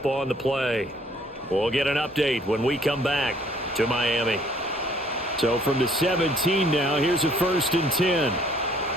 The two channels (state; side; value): normal; both; correlation 0.61